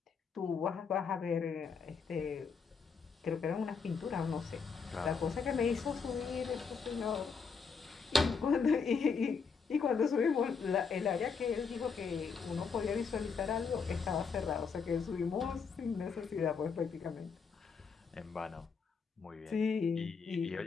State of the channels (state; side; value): quieter; right; 5.6 dB